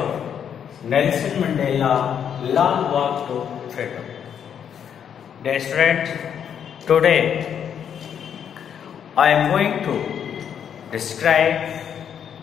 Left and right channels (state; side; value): quieter; right; 8.4 dB